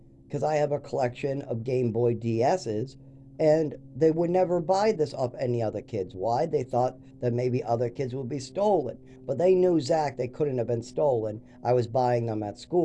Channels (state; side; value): identical; both; correlation 1.00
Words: because I have a collection of Game Boy DSs, and they would never buy this off any other kids. Why? They thought that maybe other kids would be stolen. But they knew Zach, they couldn't have been stolen. I was buying them at